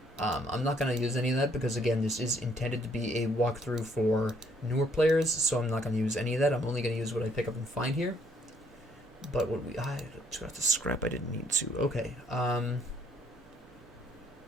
I'm not going to use any of that because, again, this is intended to be a walkthrough for newer players, so I'm not going to use any of that. I'm only going to use what I pick up and find here. But what we... I got the scrap I didn't need to. Okay. I'm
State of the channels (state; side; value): normal; both; correlation 0.67